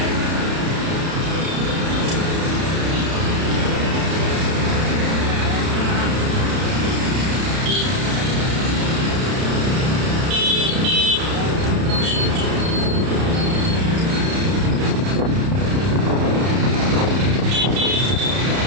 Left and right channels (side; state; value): left; late; 31 ms